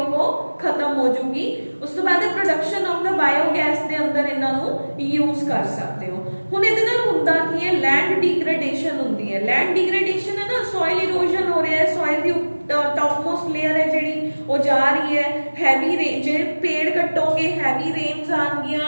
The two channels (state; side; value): inverted; both; correlation -1.00